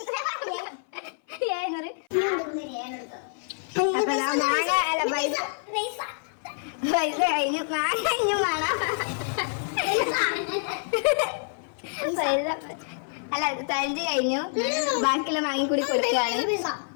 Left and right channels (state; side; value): silent; right; 57 dB below the other